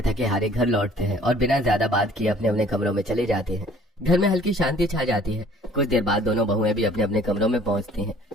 थके हारे घर लौटते हैं और बिना ज्यादा बात किए अपने अपने कमरों में चले जाते हैं। घर में हल्की शांति छा जाती है। कुछ देर बाद दोनों बहुएं भी अपने अपने कमरों में पहुंचती हैं।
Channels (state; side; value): normal; both; correlation 0.54